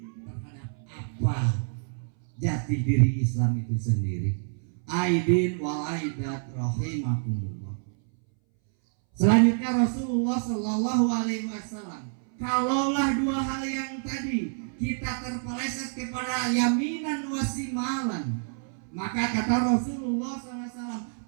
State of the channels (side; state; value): left; silent; 60 dB below the other